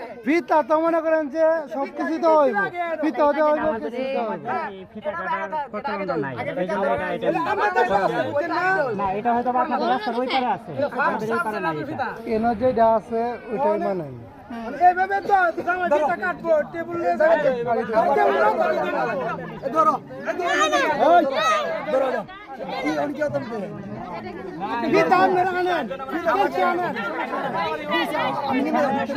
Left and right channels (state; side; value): identical; both; correlation 1.00